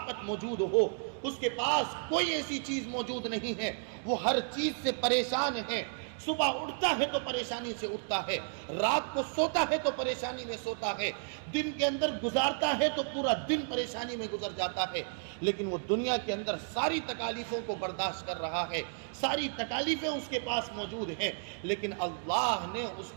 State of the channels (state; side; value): silent; left; digital silence